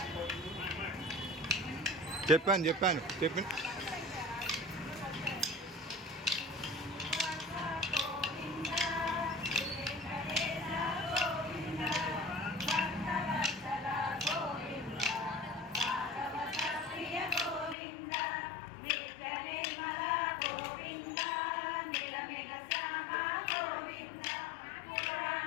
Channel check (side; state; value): right; drops out; at 17.8 s